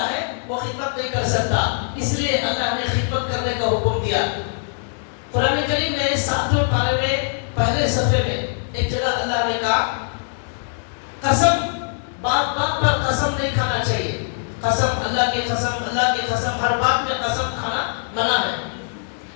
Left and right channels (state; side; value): silent; right; digital silence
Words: ہے وہ خدمت نہیں کر سکتا. اس لیے اللہ نے خدمت کرنے کا حکم دیا. قرآن کریم میں 7ویں پارے میں پہلے صفحے میں ایک جگہ اللہ نے کہا قسم, بات بات پر قسم نہیں کھانا چاہیے. قسم, اللہ کی قسم, اللہ کی قسم, ہر بات میں قسم کھانا منع ہے.